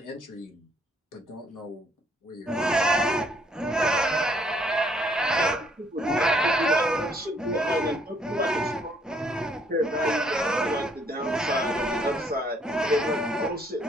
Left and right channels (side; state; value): both; normal; correlation 0.67